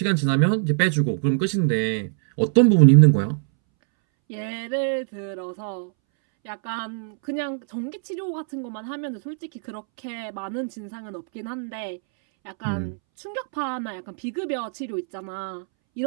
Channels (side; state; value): left; silent; 63 dB below the other